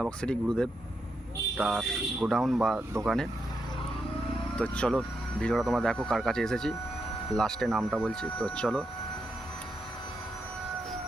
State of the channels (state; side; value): normal; both; correlation 0.82